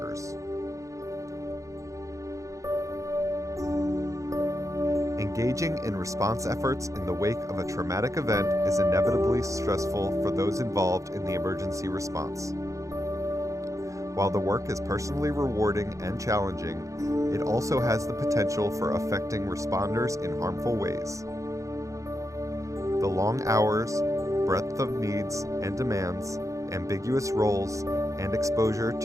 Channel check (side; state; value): left; late; 0.15 ms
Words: Engaging in response efforts in the wake of a traumatic event is inevitably stressful for those involved in the emergency response. While the work is personally rewarding and challenging, it also has the potential for affecting responders in harmful ways. The long hours, breadth of needs and demands, ambiguous roles, and exposure